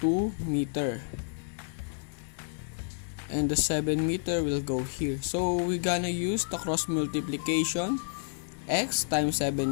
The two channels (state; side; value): silent; right; 58 dB below the other